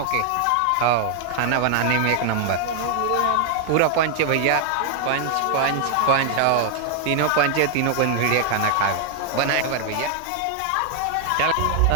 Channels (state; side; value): different; both; correlation 0.00